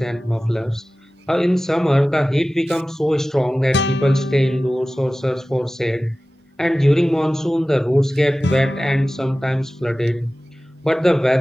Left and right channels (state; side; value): normal; both; correlation 0.96